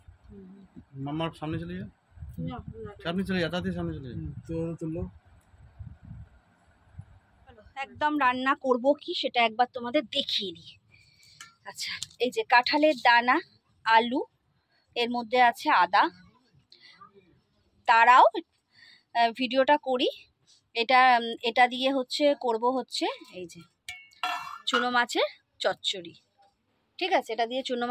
মামার সামনে চলে যা, সামনে চলে যা, তাড়াতাড়ি সামনে চলে যা। তুলো একদম রান্না করব কি সেটা একবার তোমাদের দেখিয়ে দিই। আচ্ছা, এই যে কাঁঠালের দানা, আলু, এর মধ্যে আছে আদা। তারাও ভিডিওটা করি। এটা দিয়ে করব এই যে চুনো মাছের চচ্চড়ি, ঠিক আছে? এটা দিয়ে চুনো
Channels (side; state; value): both; identical; correlation 1.00